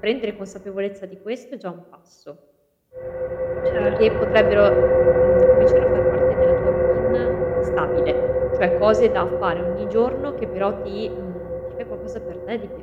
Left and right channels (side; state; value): both; identical; correlation 1.00